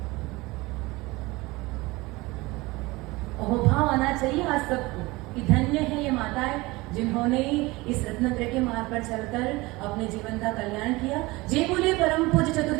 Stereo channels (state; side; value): quieter; left; 22.0 dB